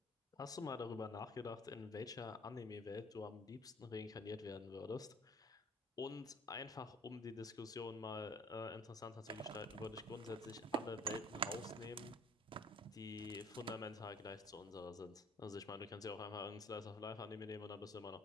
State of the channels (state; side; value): normal; both; correlation 0.52